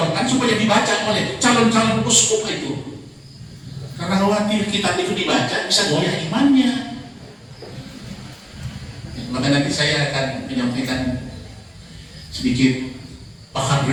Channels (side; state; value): both; identical; correlation 1.00